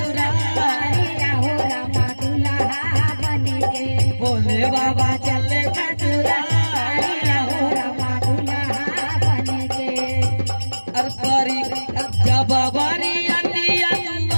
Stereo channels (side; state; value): both; inverted; correlation -1.00